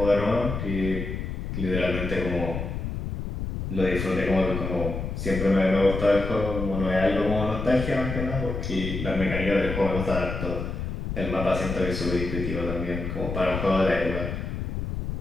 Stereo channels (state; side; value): noise; left; rumble, 4 dB below the sound